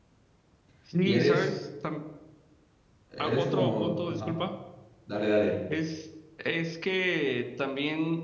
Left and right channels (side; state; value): both; identical; correlation 1.00